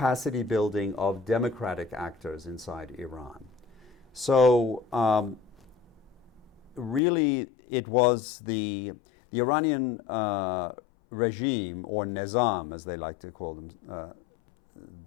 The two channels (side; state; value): right; drops out; at 7.0 s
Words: building of democratic actors inside Iran. So really it was the Iranian regime, or Nizam as they like to call them,